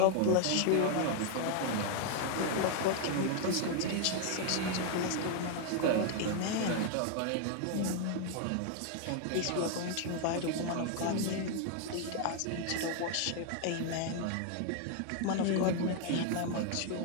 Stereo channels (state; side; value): different; both; correlation 0.00